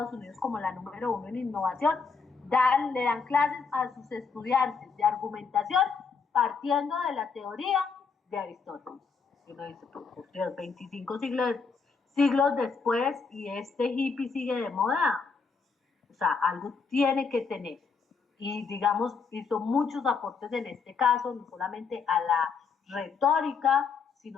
Unidos como la número 1 en innovación, le dan clases a sus estudiantes de argumentación partiendo de la teoría de Aristóteles. Y uno dice, por Dios, 25 siglos después y este hippie sigue de moda. O sea, algo tiene que tener. Y digamos, hizo muchos aportes en este caso, no solamente a la retórica,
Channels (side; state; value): right; quieter; 5.3 dB